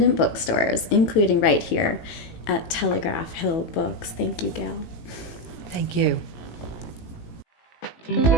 bookstores, including right here at Telegraph Hill Books. Thank you, Gail. Thank you.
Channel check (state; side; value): late; right; 18 ms